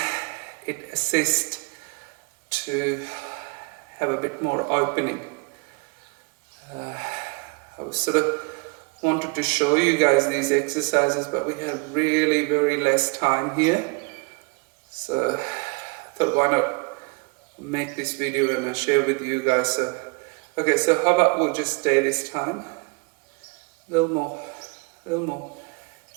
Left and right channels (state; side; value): quieter; left; 30.3 dB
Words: it assists to have a bit more opening. I was sort of wanted to show you guys these exercises, but we have really very less time here. So I thought, why not make this video and I'll share with you guys. So, okay, so how about we'll just stay this time. A little more.